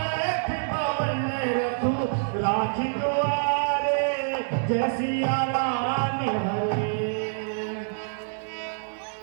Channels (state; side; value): silent; left; digital silence